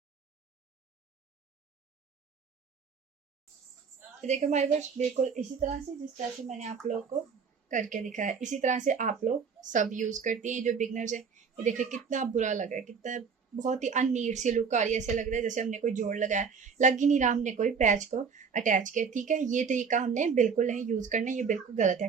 तो देखिए हमारे पास बिल्कुल इसी तरह से, जिस तरह से मैंने आप लोग को करके दिखाया, इसी तरह से आप लोग सब यूज करती हैं जो बिगनर्स है। ये देखिए कितना बुरा लग रहा है, कितना बहुत ही अननीट सी लुक आ रही है, ऐसे लग रहा है जैसे हमने कोई जोड़ लगाया, लग ही नहीं रहा हमने कोई पैच को अटैच किया, ठीक है। ये तरीका हमने बिल्कुल नहीं यूज करना, ये बिल्कुल गलत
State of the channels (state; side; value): quieter; left; 5.9 dB